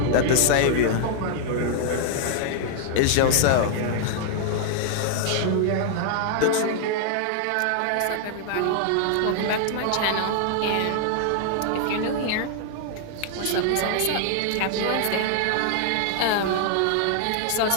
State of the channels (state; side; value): different; both; correlation -0.01